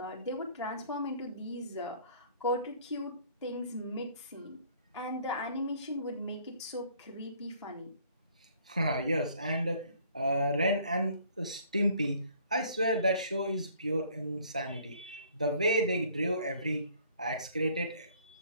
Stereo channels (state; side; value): inverted; both; correlation -0.58